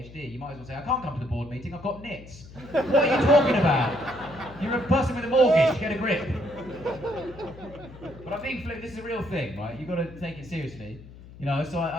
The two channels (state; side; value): noise; left; hum, 18 dB below the sound